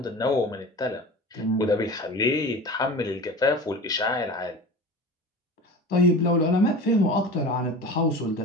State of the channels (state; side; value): normal; both; correlation 0.34